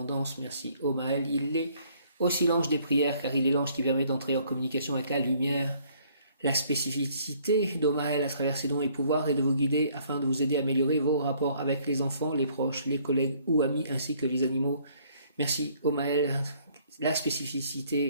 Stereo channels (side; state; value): both; inverted; correlation -0.63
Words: Merci Omahel. Il est aussi l'ange des prières, car il est l'ange qui permet d'entrer en communication avec la lumière. La spécificité d'Omahel à travers ses dons et pouvoirs est de vous guider afin de vous aider à améliorer vos rapports avec les enfants, les proches, les collègues ou amis, ainsi que les animaux. Merci Omaël, la